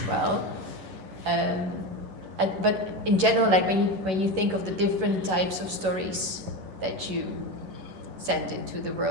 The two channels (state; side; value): late; left; 11 ms